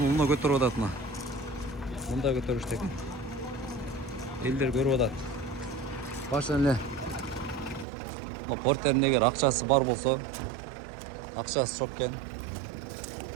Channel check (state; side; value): drops out; left; at 7.9 s